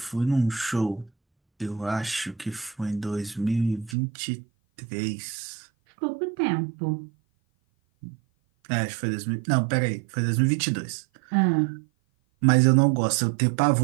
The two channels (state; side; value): drops out; left; at 4.0 s